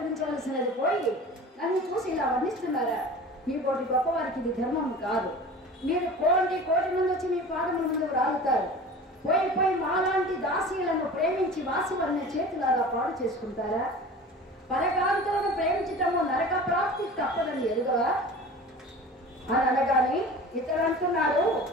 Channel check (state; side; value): normal; both; correlation 0.38